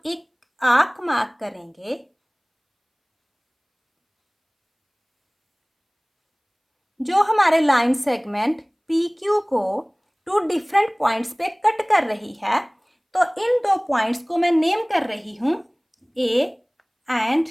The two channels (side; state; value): both; identical; correlation 1.00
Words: एक आर्क मार्क करेंगे जो हमारे लाइन सेगमेंट PQ को टू डिफरेंट पॉइंट्स पे कट कर रही है. तो इन दो पॉइंट्स को मैं नेम कर रही हूं A एंड